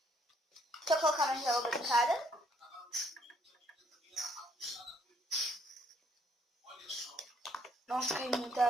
Deixa eu colocar mais água boricada. Nossa, caiu muita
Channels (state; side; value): normal; both; correlation 0.68